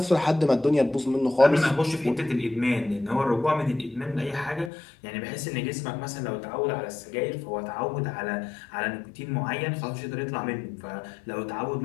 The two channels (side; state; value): right; drops out; at 4.7 s